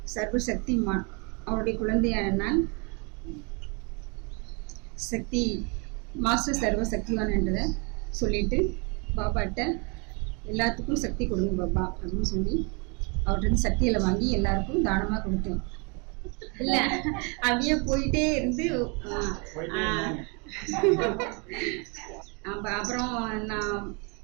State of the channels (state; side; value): quieter; left; 32.9 dB